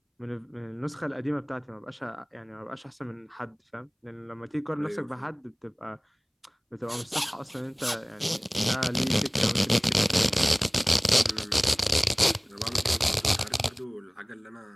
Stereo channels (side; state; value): both; identical; correlation 1.00